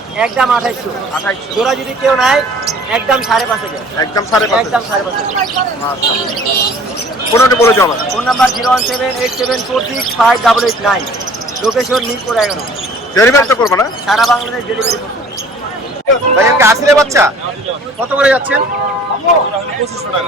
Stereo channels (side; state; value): both; normal; correlation 0.51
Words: একদম 2800 2800 জোড়া যদি কেউ নেয় একদম 5.5 একদম 5.5 একদম 5.5 ফোনটা বলে যাও আমার phone number 01787465889 location Mirpur 11 delivery তো করবো না সারা বাংলাদেশ ডেলিভারি করছি ভাই এখানে আসলে বাচ্চা কত করে যাচ্ছেন 2500